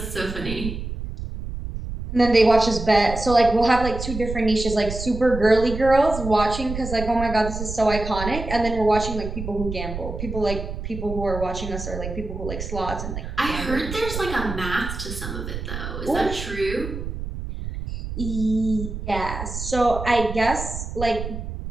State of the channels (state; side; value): noise; right; rumble, 7 dB below the sound